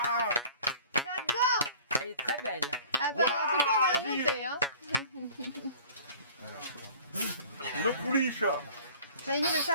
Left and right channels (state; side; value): inverted; both; correlation -0.48